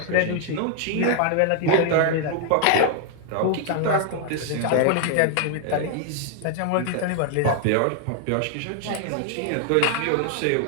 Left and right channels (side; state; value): both; different; correlation 0.00